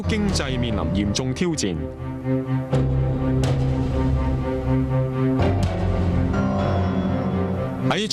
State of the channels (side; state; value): both; identical; correlation 1.00